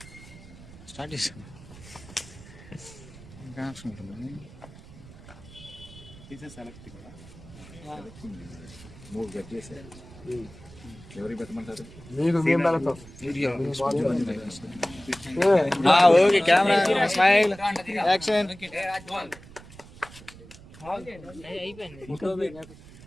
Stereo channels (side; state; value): right; noise; rumble, 19 dB below the sound